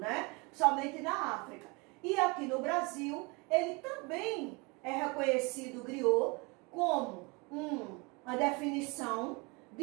somente na África. E aqui no Brasil, ele também é reconhecido, o griot, como uma definição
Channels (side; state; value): left; quieter; 28.5 dB